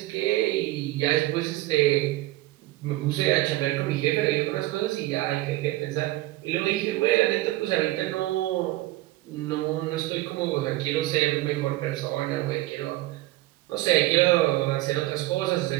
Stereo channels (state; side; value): quieter; left; 17.8 dB